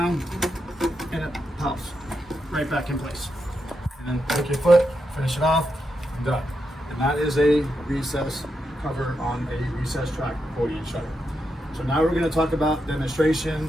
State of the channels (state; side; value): normal; both; correlation 0.85